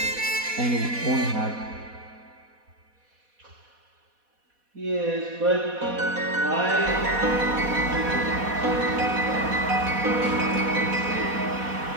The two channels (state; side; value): late; left; 4.1 ms